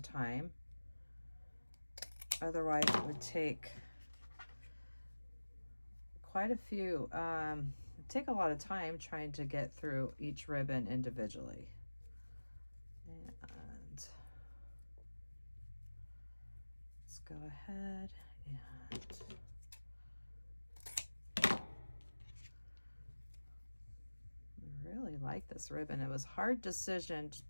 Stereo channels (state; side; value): inverted; both; correlation -1.00